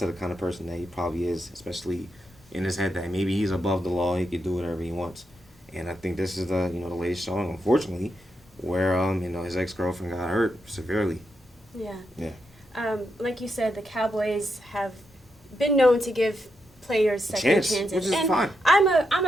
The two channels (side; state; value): both; normal; correlation 0.83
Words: the kind of person that he probably is, especially in his head that maybe he's above the law, he can do whatever he wants. And I think this is the latest showing, unfortunately, where his ex-girlfriend got hurt severely. Yeah. Like you said, the Cowboys have been known to give players second chances, which is and fine. I'm